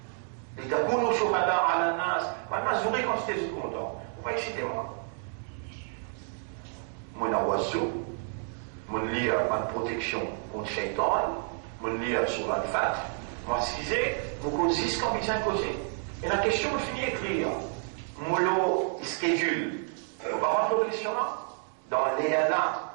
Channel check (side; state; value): left; silent; 56 dB below the other